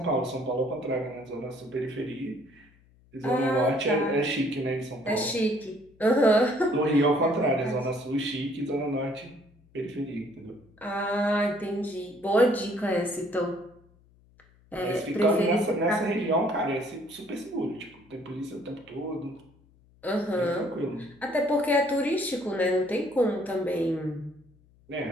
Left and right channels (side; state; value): left; noise; hum, 30 dB below the sound